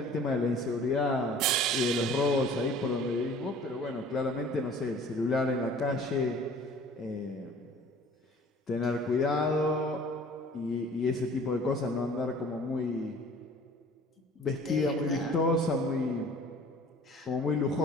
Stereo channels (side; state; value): both; normal; correlation 0.49